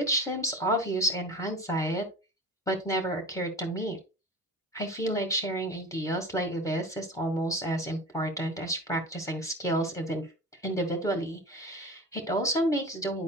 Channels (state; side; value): normal; both; correlation 0.36